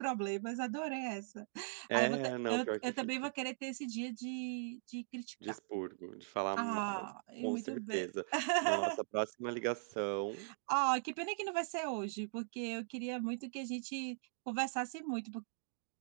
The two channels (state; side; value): silent; left; digital silence